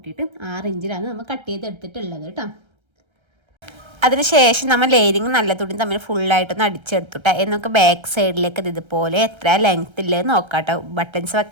6 ഇഞ്ചിലാണ് നമ്മൾ കട്ട് ചെയ്തെടുത്തിട്ടുള്ളത് കേട്ടോ. അതിനുശേഷം നമ്മൾ ലൈനിങ് നല്ല തുണി തമ്മിൽ ഫുള്ളായിട്ടൊന്ന് അടിച്ചെടുത്തുട്ടോ. എന്നൊക്കെ ബാക്ക് സൈഡിലേക്ക് ഇതുപോലെ എത്ര ലെങ്ത്ത് ഇല്ലെന്ന് നോക്കാം കേട്ടോ. ബട്ടൺസ്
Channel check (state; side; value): late; left; 1.3 ms